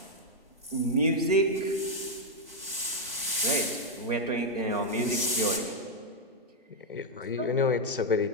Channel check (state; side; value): normal; both; correlation -0.01